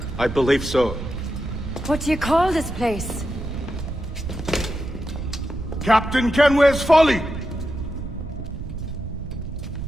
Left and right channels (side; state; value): right; noise; rumble, 8 dB below the sound